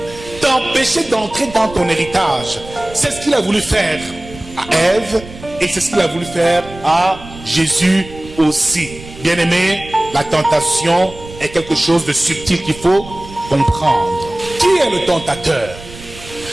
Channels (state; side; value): noise; right; rumble, 17 dB below the sound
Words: t'empêcher d'entrer dans ton héritage. C'est ce qu'il a voulu faire à Ève et c'est ce qu'il a voulu faire à Jésus aussi. Bien-aimé, la tentation est quelque chose de subtil qu'il faut comprendre. Qui est le tentateur?